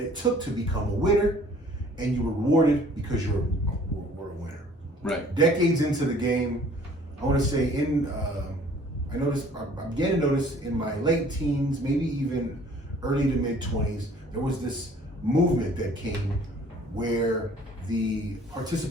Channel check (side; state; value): both; normal; correlation 0.54